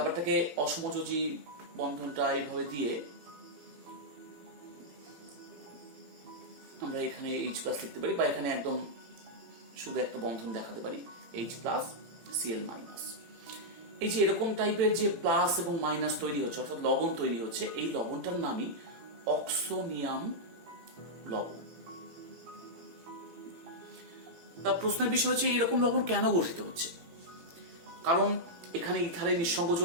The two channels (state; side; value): late; left; 18 ms